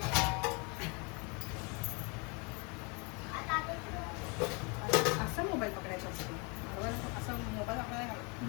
असं मोबाईल पकडायचा असतो बरोबर. असं मोबाईल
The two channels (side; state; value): right; quieter; 31.9 dB